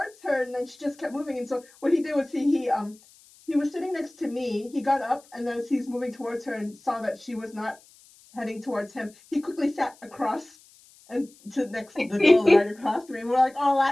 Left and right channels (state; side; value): noise; left; hiss, 27 dB below the sound